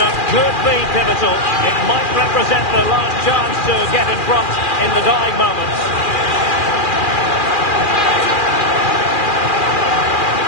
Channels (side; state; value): right; late; 2.4 ms